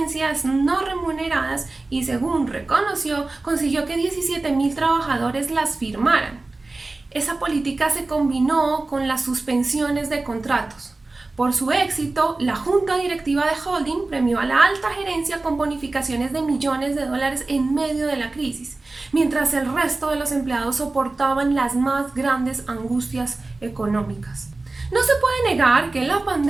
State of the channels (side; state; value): left; quieter; 3.2 dB